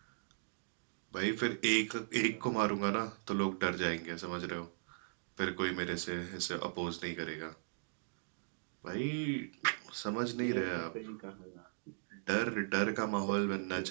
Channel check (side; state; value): left; silent; digital silence